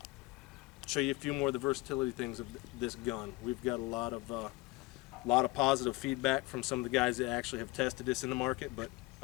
Show you a few more of the versatility things of this gun. We've got a lot of positive feedback from some of the guys that actually have tested this in the market, but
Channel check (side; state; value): right; quieter; 22.2 dB